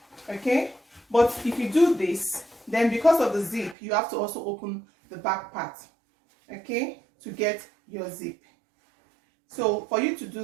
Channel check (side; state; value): left; drops out; at 3.8 s